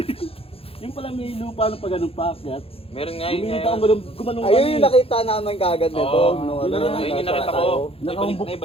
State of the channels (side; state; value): right; late; 0.27 ms